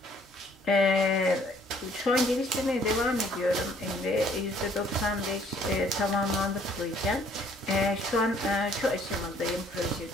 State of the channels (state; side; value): normal; both; correlation 0.61